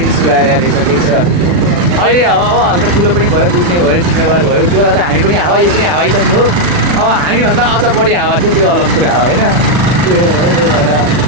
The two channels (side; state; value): left; late; 40 ms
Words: सुधाएर रहेछ, ठिक छ। अहिले अब हल्का ठुलो पनि भयो, बुझ्ने भयो, जिम्मेवार भयो। त्यो बेला त हामी पनि हावा, यो पनि हावै त थियो। अब हामीभन्दा अझ बढी हावा थियो, त्यो अलग कुरा हो होइन। त्यो